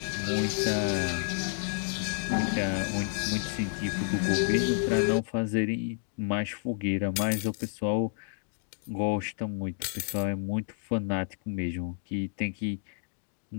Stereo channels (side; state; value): right; silent; digital silence